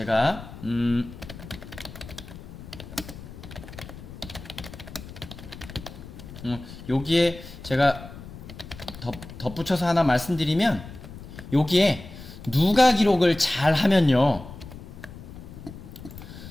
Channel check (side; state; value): left; noise; rumble, 14 dB below the sound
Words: 여기에 제가 덧붙여서 하나 말씀드리면 여기에 누가 기록을 잘 하면요.